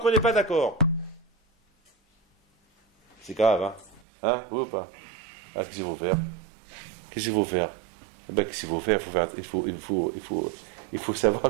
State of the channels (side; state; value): left; drops out; at 4.0 s